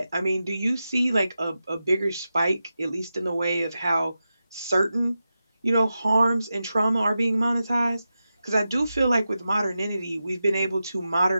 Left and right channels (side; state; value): both; inverted; correlation -0.91